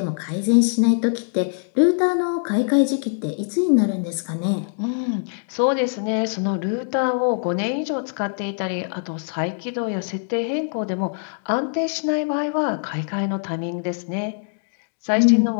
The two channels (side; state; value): right; silent; digital silence